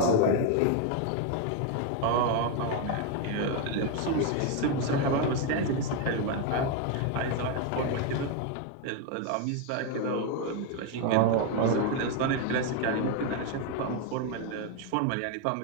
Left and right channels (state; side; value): different; both; correlation 0.01